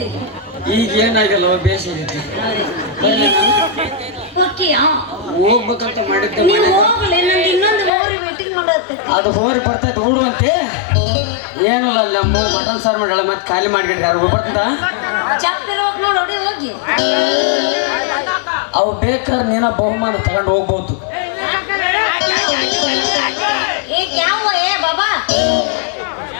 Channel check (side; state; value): right; drops out; at 7.9 s